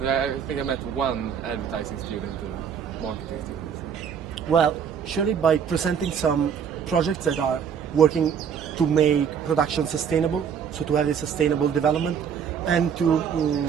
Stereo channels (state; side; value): quieter; left; 7.5 dB